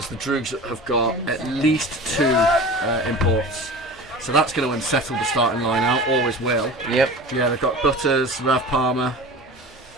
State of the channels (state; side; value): normal; both; correlation 0.36